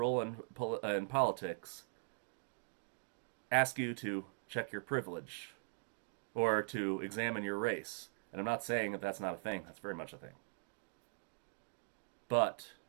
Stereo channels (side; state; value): left; silent; digital silence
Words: in politics, ask you to check your privilege or to examine your race. And I'm not saying that that's not a thing. That's very much a thing. But